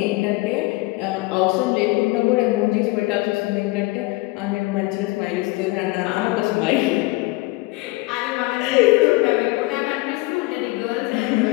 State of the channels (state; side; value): quieter; right; 21.9 dB